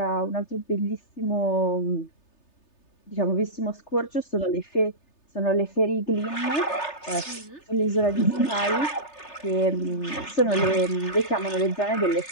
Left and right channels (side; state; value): right; late; 3.3 ms